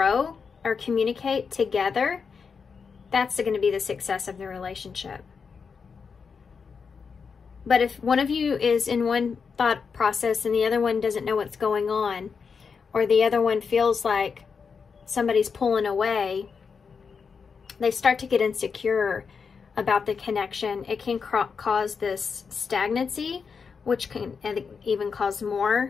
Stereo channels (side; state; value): right; quieter; 5.7 dB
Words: or communicate together, that's going to be the success of the relationship. But if one of you is in one thought process and the other one doesn't know what's going on, or the other one feels like somebody's pulling away, they start to get insecure about the connection. It can cause this stagnancy, which can even cause